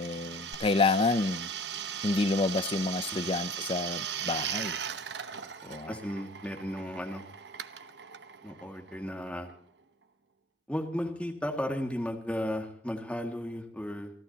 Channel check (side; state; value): both; normal; correlation 0.49